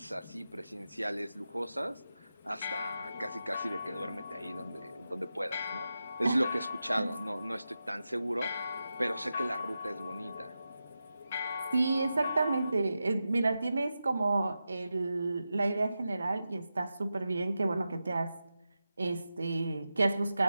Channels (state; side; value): inverted; both; correlation -0.91